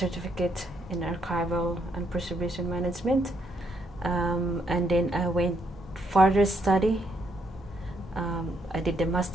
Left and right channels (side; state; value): both; normal; correlation 0.75